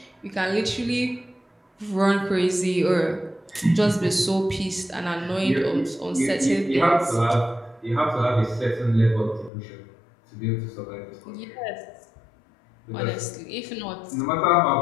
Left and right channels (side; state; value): right; drops out; at 9.5 s